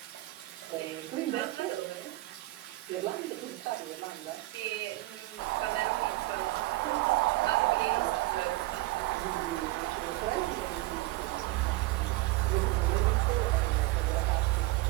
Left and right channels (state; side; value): quieter; left; 19.8 dB